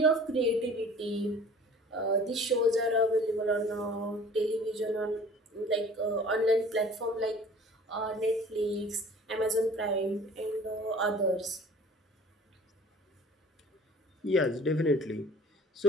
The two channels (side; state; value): both; normal; correlation 0.47